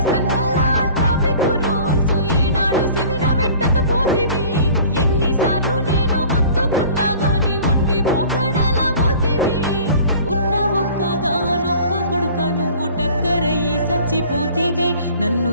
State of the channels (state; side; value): inverted; both; correlation -0.47